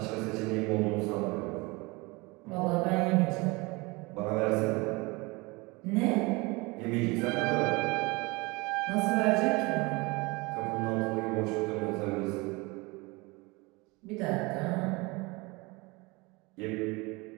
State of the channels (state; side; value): quieter; left; 25.2 dB